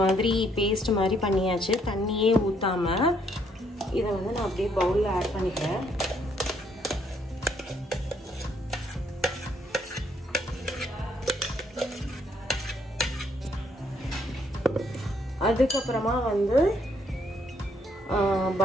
மாதிரி பேஸ்ட் மாதிரி பண்ணியாச்சு, தண்ணியே ஊத்தாம. இதை வந்து நான் அப்படியே பவுலில் ஆட் பண்ணிக்கிறேன். அதுக்கப்புறமா வந்து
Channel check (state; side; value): normal; both; correlation 0.70